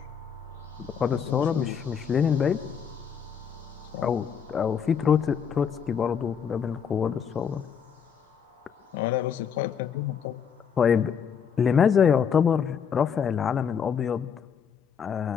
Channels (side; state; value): right; quieter; 7.3 dB